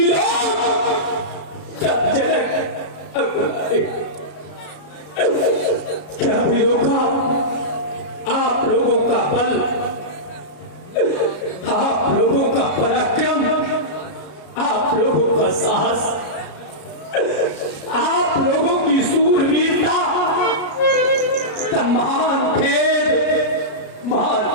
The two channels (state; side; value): late; right; 33 ms